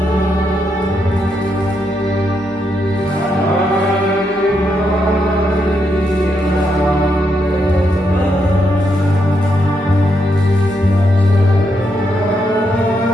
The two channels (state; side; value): normal; both; correlation 0.80